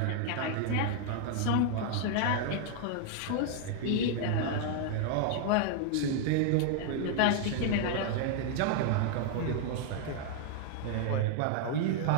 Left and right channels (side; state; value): both; different; correlation 0.00